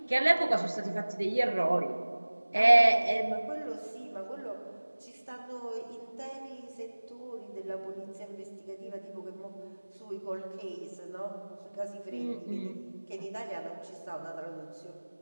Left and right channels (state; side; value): inverted; both; correlation -1.00